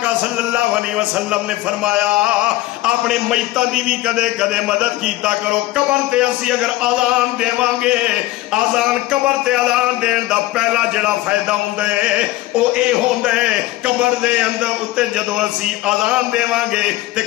صلی اللہ علیہ وسلم نے فرمایا اپنے میتاں دی بھی کدے کدے مدد کیتا کرو. قبر تے اسی اگر اذان دیواں گے اذان قبر تے اذان دین دا پہلا جڑا فائدہ ہوندا ہے او اے ہوندا ہے قبر دے اندر اتے جدوں اسی اذان دیواں گے تے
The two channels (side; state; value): right; quieter; 17.2 dB